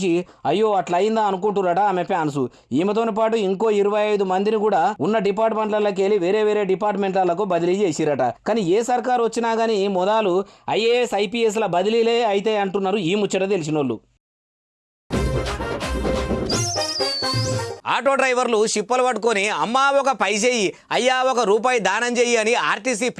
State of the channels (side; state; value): both; identical; correlation 1.00